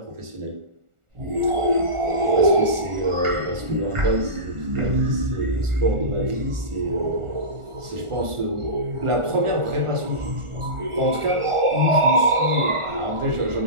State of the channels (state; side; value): late; left; 1.4 ms